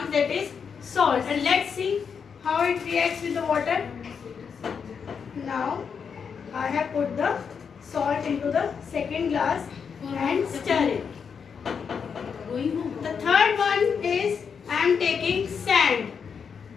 that is salt. And let's see how it reacts with the water. Now, I have put the salt into the second glass and stir it. The third one is I am taking sand.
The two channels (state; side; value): quieter; right; 6.4 dB